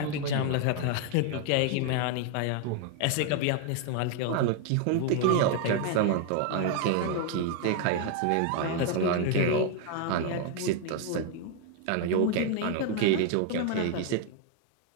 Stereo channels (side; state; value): both; different; correlation 0.00